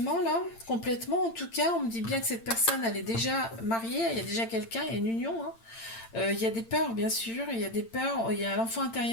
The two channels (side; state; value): right; late; 8.8 ms